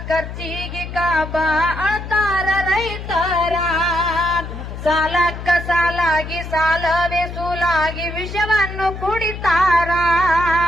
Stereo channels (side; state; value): left; noise; hum, 9 dB below the sound